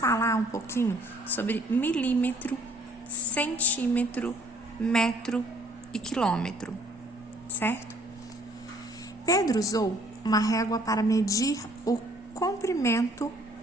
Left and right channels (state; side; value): normal; both; correlation 0.60